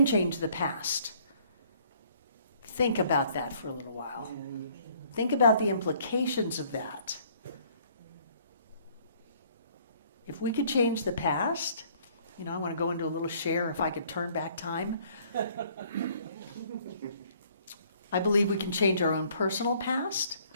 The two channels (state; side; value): inverted; both; correlation -0.60